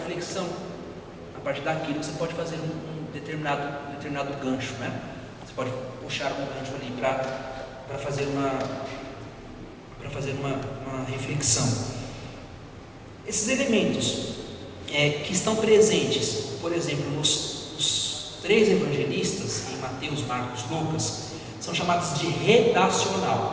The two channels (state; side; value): identical; both; correlation 1.00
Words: A partir daquilo você pode fazer um determinado gancho, né? Você pode puxar um gancho ali para fazer uma reflexão. Esses elementos que estão presentes, por exemplo, nos 3 evangelistas, em Mateus, Marcos, Lucas, são chamados de